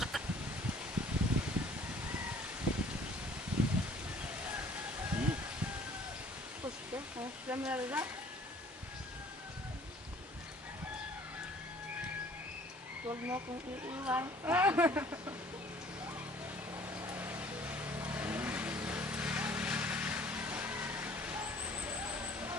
Dami na rin. Huwag mo akong iiwan.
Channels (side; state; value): both; normal; correlation 0.54